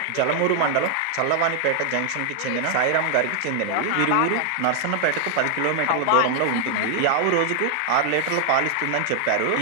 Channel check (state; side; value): different; both; correlation 0.00